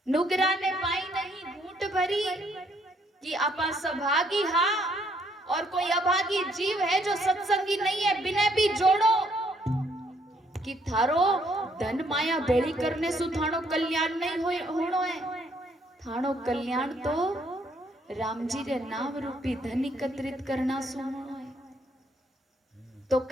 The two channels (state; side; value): normal; both; correlation 0.69